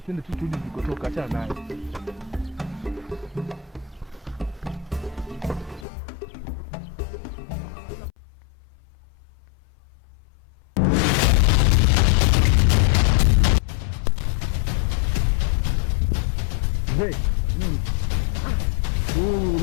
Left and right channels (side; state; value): right; drops out; at 5.9 s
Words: twende tu turudi tulikotoka, achana naye.